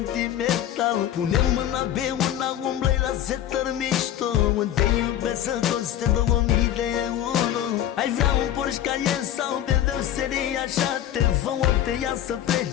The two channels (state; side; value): quieter; right; 11.5 dB